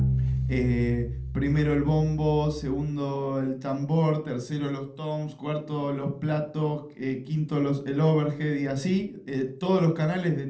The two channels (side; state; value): both; identical; correlation 1.00